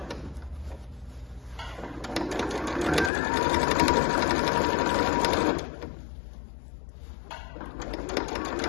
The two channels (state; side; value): drops out; right; at 3.1 s